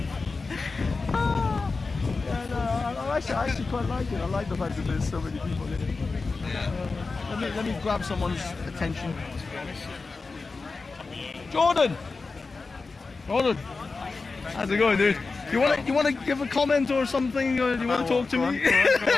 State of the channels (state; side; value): quieter; right; 4.1 dB